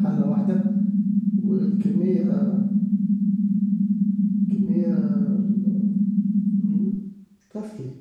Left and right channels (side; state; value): both; identical; correlation 1.00